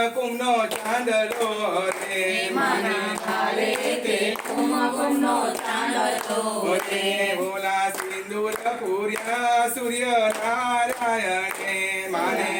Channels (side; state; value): both; identical; correlation 1.00